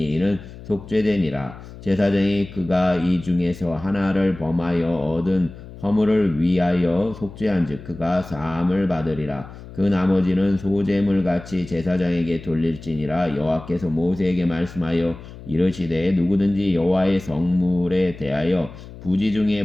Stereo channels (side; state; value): left; noise; hum, 16 dB below the sound